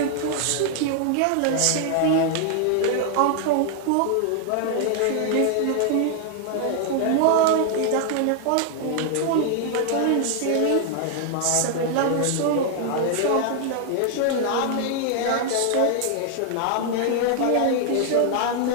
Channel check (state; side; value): different; both; correlation 0.00